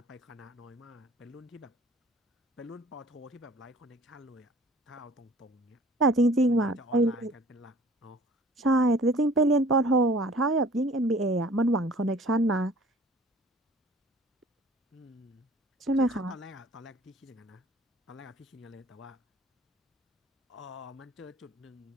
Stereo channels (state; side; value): normal; both; correlation 0.50